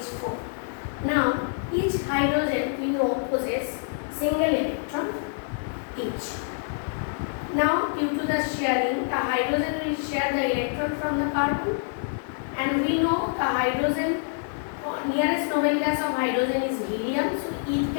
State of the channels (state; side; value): silent; right; 61 dB below the other